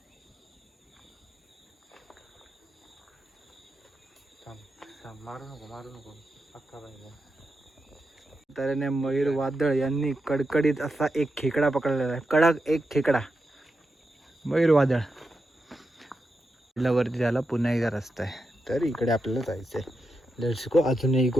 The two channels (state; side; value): normal; both; correlation 0.87